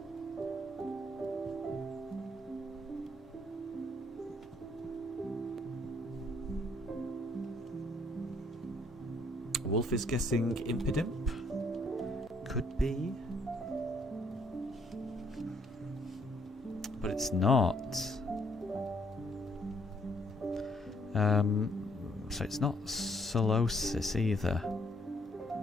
Wolf is guessing Impidimp. Could be. But it's not. So it's not Solosis either.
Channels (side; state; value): both; normal; correlation 0.67